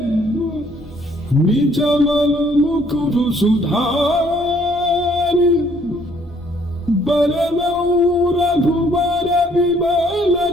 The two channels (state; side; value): normal; both; correlation 0.64